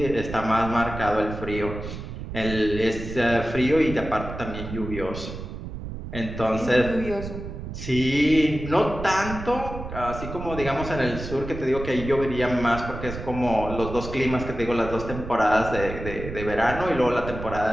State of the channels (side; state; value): right; noise; rumble, 8 dB below the sound